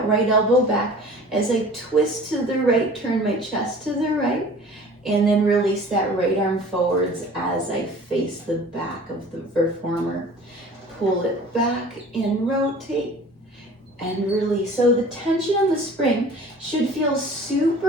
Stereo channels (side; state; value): both; normal; correlation 0.45